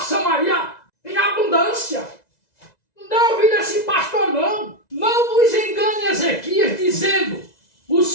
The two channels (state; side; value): late; right; 2.0 ms